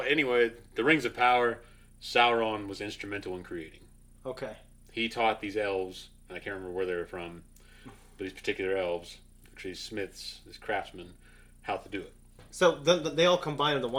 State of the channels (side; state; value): both; identical; correlation 1.00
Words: the Rings of Power, Sauron was instrumental in creating. Okay. He taught these elves, and I can't remember where they were from, but these particular elves, these smiths, these craftsmen, how to do it. So they all combine into